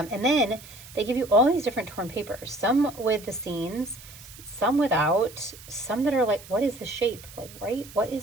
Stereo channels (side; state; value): right; noise; hiss, 18 dB below the sound